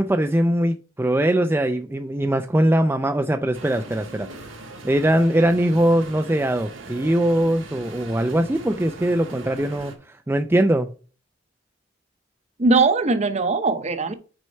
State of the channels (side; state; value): both; normal; correlation 0.76